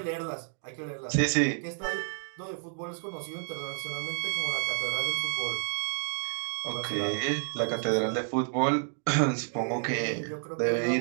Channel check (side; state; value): left; silent; 58 dB below the other